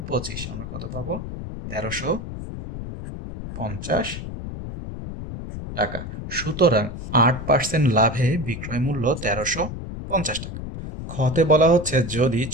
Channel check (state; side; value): noise; left; rumble, 8 dB below the sound